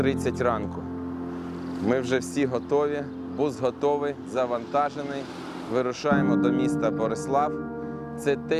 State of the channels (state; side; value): identical; both; correlation 1.00